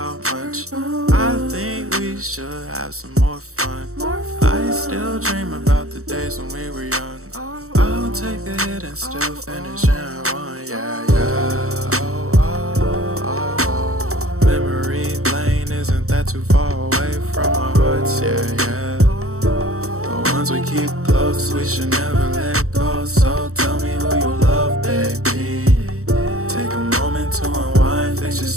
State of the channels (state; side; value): late; left; 0.64 ms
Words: much. I think we should have some more fun. I still dream about the days when we were young. I'll take a hit and still finish in one, yeah, yeah. Memory lane, isn't that too far away from our hearts, yeah, yeah. The ones we keep close, we should never let go. So tell me who you love, baby. Take a moment to unwind, fix